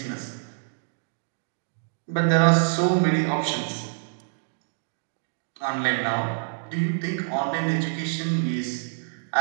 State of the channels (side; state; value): left; silent; digital silence